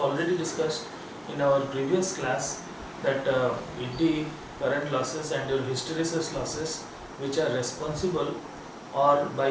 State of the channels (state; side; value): identical; both; correlation 1.00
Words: discussed in our previous class that ED, current losses and your hysteresis losses which are responsible, or by